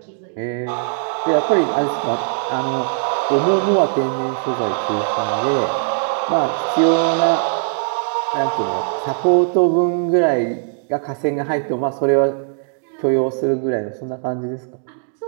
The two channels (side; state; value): left; silent; digital silence